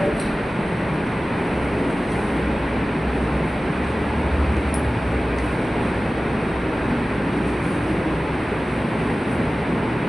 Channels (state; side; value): normal; both; correlation 0.96